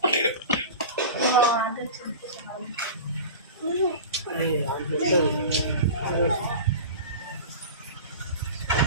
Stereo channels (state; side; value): inverted; both; correlation -0.33